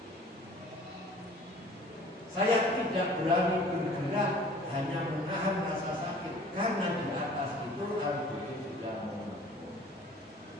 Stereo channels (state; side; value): normal; both; correlation 0.49